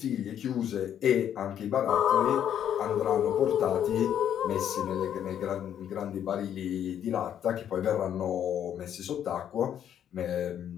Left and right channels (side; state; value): right; quieter; 9.8 dB